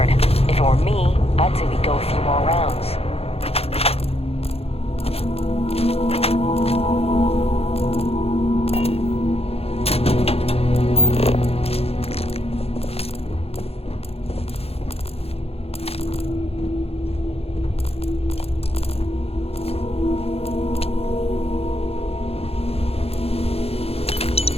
If it were me, I'd say we go a few more rounds.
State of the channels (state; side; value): late; right; 0.29 ms